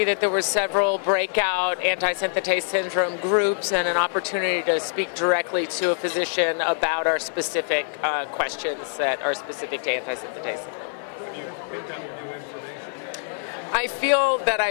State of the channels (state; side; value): silent; right; 56 dB below the other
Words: that there were several breakout antisynthetase syndrome groups and an opportunity to speak directly to a physician about our specific questions that are specific to antisynthetase syndrome. Have you picked up new information? I feel that